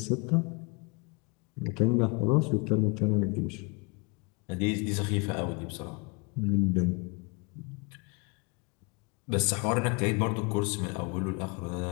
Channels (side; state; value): right; quieter; 30.5 dB